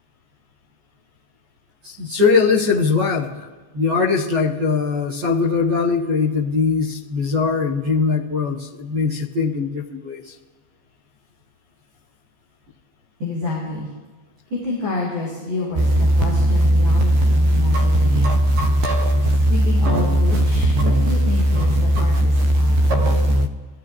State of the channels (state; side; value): late; left; 14 ms